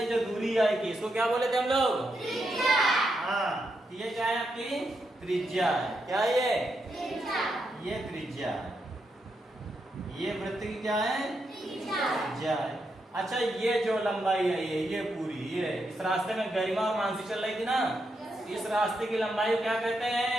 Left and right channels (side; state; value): both; normal; correlation 0.83